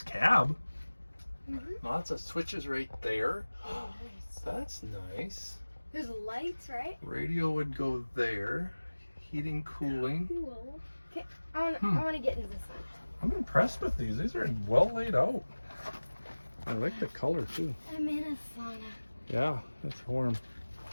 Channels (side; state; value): both; inverted; correlation -1.00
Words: cab. Mm-hmm. Lots of switches right there. Oh, nice. That's nice. There's lights, right? Radio would go there. Heating, cooling. Cool. Okay, I want to get into this one. I'm impressed with these. These are well laid out. I like the color too. I'm in a sauna. Yeah, it's warm.